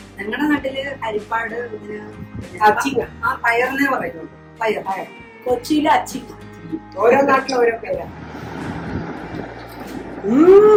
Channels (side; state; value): both; identical; correlation 1.00